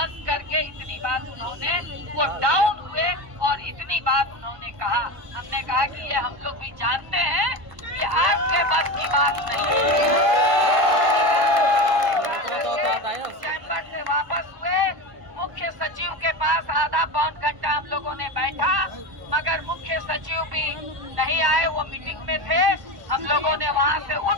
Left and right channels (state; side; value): late; left; 1.0 ms